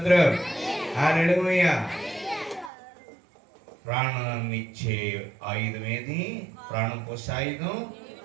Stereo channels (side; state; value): left; drops out; at 2.7 s